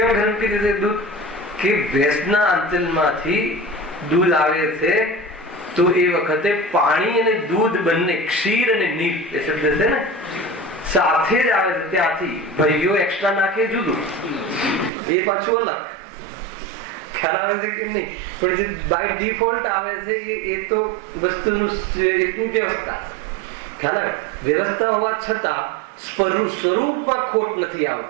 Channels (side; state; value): left; drops out; at 14.9 s